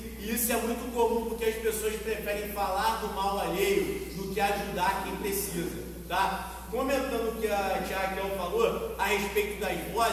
E isso é muito comum porque as pessoas preferem falar do mal alheio do que ajudar quem precisa, tá? Comentando o que a tia Raquel falou a respeito das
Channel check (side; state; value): both; identical; correlation 1.00